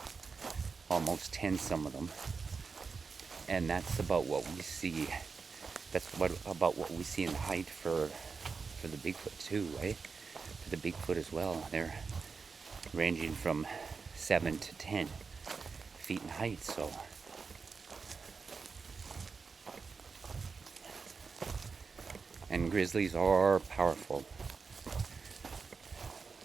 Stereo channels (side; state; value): left; quieter; 5.0 dB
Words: almost 10 some of them. And that's about what we see. That's about what we see in height for the Bigfoot too, right? For the Bigfoot as well. They're ranging from 7 to 10 feet in height, so. And grizzlies are powerful.